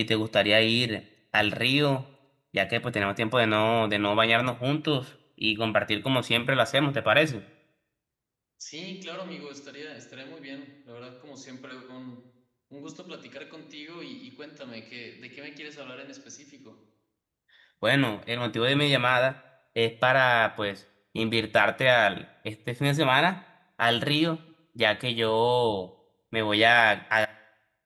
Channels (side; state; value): both; identical; correlation 1.00